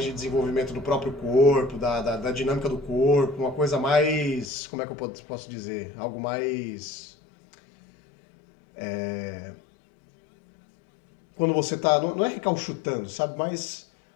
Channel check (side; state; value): right; drops out; at 4.5 s